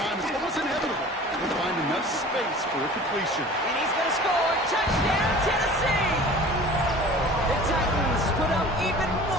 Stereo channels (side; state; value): both; normal; correlation 0.43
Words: it's almost inevitable to find enough space for a completion. And he's going to score. Touchdown, Tennessee! The Titans put up even